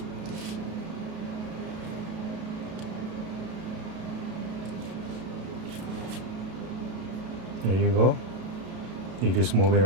There you go. You just move it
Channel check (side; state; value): left; late; 33 ms